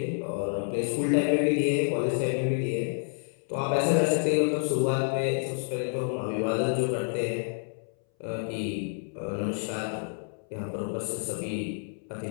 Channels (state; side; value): silent; right; 59 dB below the other